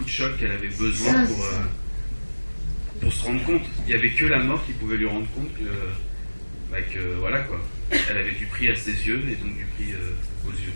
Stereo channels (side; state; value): both; inverted; correlation -1.00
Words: de choc qu'elle avait besoin pour se rendre compte. Il n'y avait que la mort qui pouvait lui rendre compte que voilà quoi. Elle avait du prix à ses yeux et donc du prix aux yeux